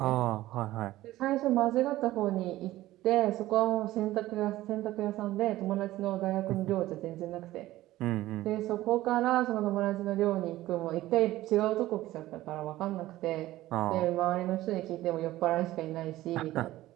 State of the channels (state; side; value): quieter; left; 16.0 dB